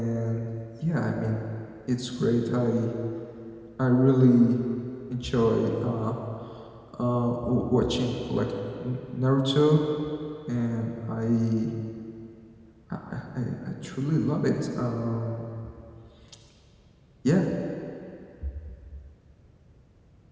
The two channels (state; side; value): identical; both; correlation 1.00